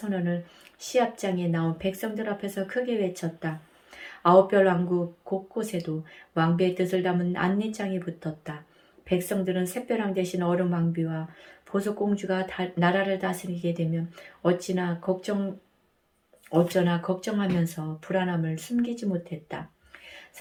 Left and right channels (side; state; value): both; identical; correlation 1.00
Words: 시합장에 나온 백성들 앞에서 크게 외쳤다. 9별 왕국 곳곳에도 왕비의 뜻을 담은 안내장이 붙었다. 백성들은 샛벼랑 대신 얼음왕비와 보석공주가 나라를 다스리게 되면 어쩌나 걱정하면서 불안함을 숨기지 못했다.